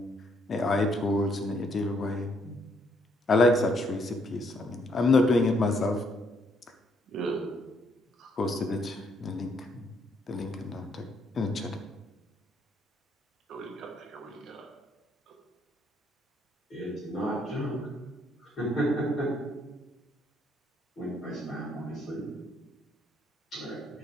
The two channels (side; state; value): both; normal; correlation 0.71